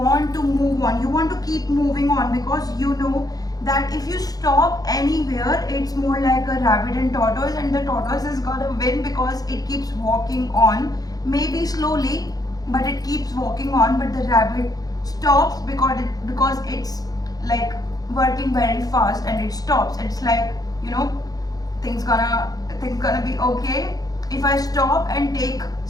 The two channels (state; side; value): late; right; 0.18 ms